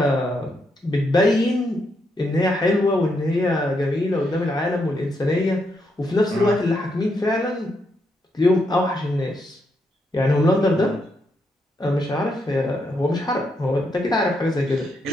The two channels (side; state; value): both; normal; correlation 0.79